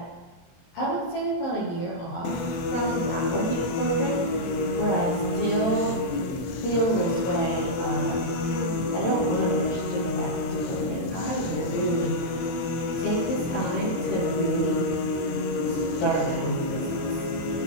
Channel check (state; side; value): late; right; 23 ms